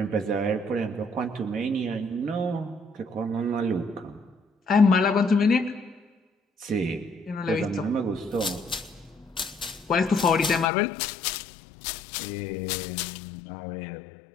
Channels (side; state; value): right; drops out; at 10.7 s